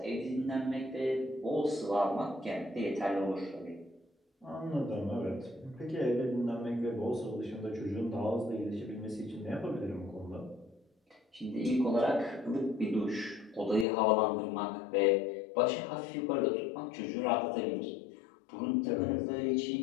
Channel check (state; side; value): drops out; right; at 13.9 s